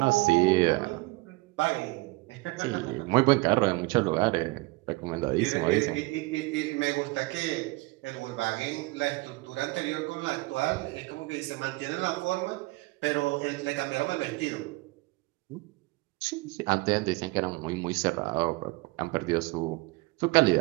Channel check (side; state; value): left; quieter; 23.1 dB